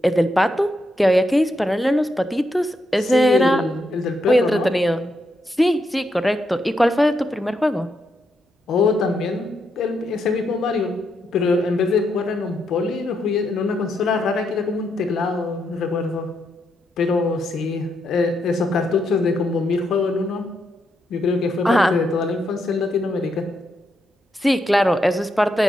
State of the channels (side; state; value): both; normal; correlation 0.80